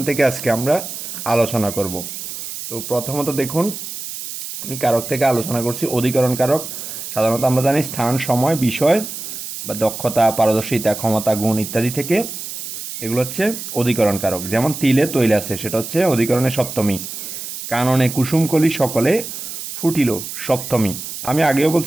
থেকে আজকে আমরা আলোচনা করব। তো প্রথমত দেখুন, আমি কারক থেকে আলোচনা করছি অধিকরণ কারক। সাধারণত আমরা জানি স্থান, সময়, বিষয় বা দক্ষতা, পারদর্শিতা, ক্ষমতা, গুণ ইত্যাদি থেকে এগুলো হচ্ছে অধিকরণ কারক। যেমন তিলে তৈল আছে, সেটা হচ্ছে অধিকরণের সপ্তমী। কাননে কুসুমকলি সকলে ফুটিল সপ্তমী। আমি আগেও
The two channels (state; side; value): noise; right; hiss, 8 dB below the sound